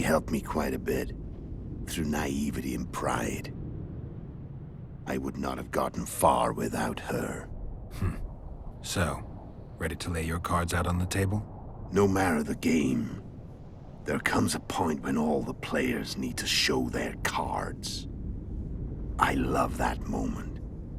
helped me quite a bit, through naivety and pride. I would not have gotten far without her. So, ready to lay your cards out on the table? No matter the game, there comes a point when all the players need to show their cards. I love that moment.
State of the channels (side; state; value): both; identical; correlation 1.00